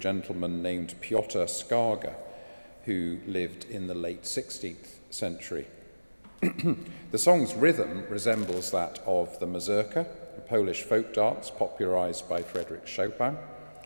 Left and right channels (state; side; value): inverted; both; correlation -1.00